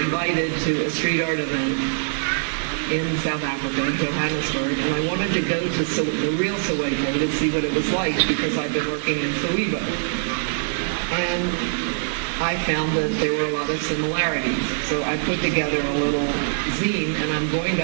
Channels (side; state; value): left; silent; digital silence